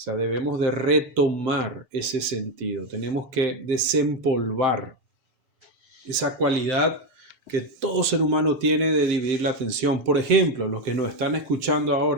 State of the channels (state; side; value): late; left; 7.1 ms